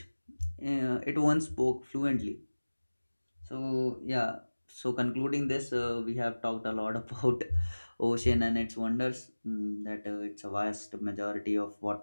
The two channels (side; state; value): both; inverted; correlation -1.00